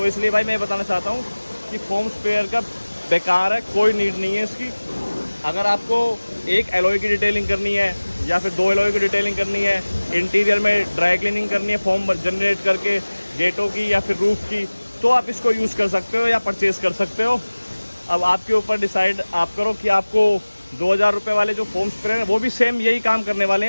इसलिए भाई मैं बताना चाहता हूँ कि फोम स्प्रेयर का बेकार है, कोई नीड नहीं है इसकी। अगर आपको एक एलॉय की डिटेलिंग करनी है या फिर 2 एलॉय की डिटेलिंग करनी है, इंटीरियर में ड्राई क्लीनिंग करनी है फॉर्म जनरेट करके गेटों की या फिर रूफ की, तो आप इसको यूज़ कर सकते हो या परचेज़ कर सकते हो। अब आपके ऊपर डिसाइड आप करो कि आपको 2000 रुपये वाले जो फोम स्प्रे हैं वो भी सेम यही काम करने वाले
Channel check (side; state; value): both; inverted; correlation -1.00